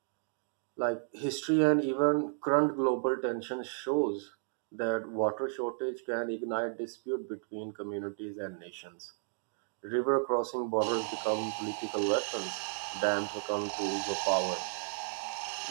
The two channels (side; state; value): left; silent; digital silence